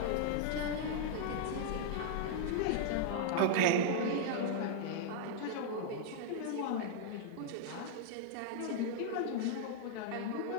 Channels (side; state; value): both; different; correlation -0.01